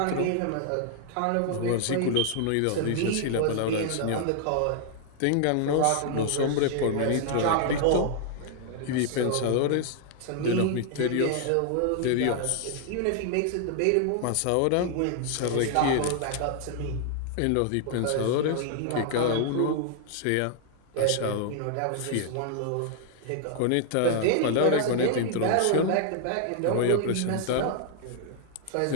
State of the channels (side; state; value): both; different; correlation 0.00